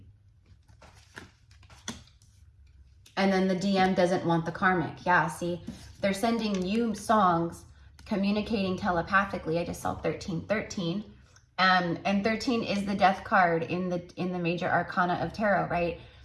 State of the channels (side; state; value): both; identical; correlation 1.00